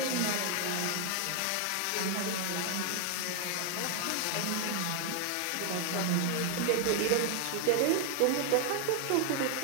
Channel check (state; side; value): different; both; correlation 0.00